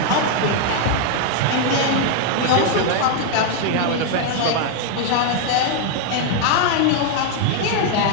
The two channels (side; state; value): both; different; correlation 0.00